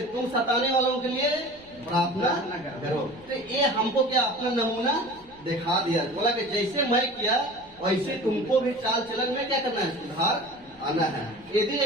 तुम सताने वालों के लिए प्रार्थना करो। तो ये हमको क्या अपना नमूना दिखा दिया। बोला कि जैसे मैं किया वैसे तुमको भी चाल चलन में क्या करना है? सुधार आना है। यदि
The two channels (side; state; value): left; noise; rumble, 27 dB below the sound